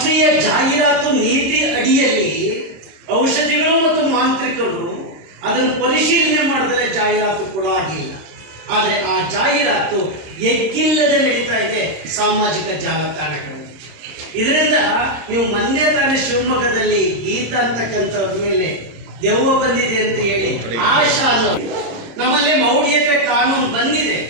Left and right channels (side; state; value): left; late; 26 ms